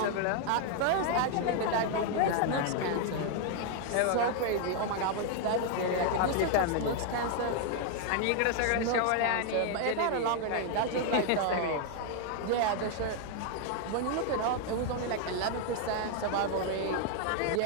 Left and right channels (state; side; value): different; both; correlation 0.00